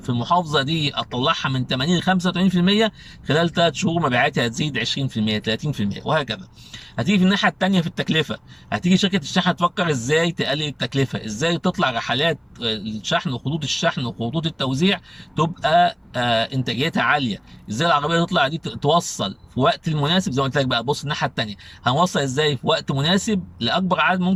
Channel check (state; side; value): identical; both; correlation 1.00